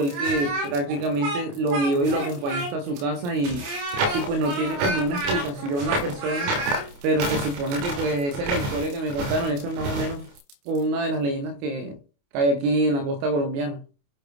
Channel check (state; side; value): late; left; 28 ms